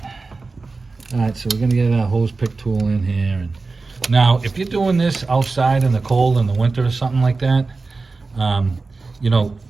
so we're gonna get our hose pick tool in here. And now, if you're doing this outside in the cold in the winter or something like that, you know,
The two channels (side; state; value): left; quieter; 3.9 dB